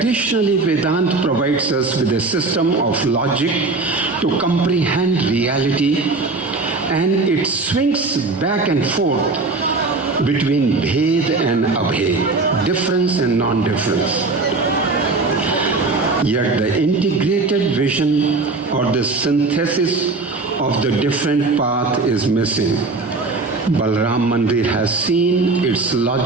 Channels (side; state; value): left; quieter; 3.6 dB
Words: Vedanta provides us with a system of logic to comprehend reality, and it swings back and forth between Bhed and Abhed, difference and non-difference. Yet the integrated vision or the synthesis of the different path is missing. Balaram Mandir has seen its